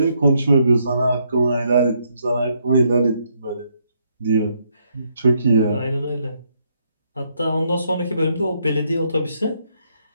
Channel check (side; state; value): both; inverted; correlation -0.74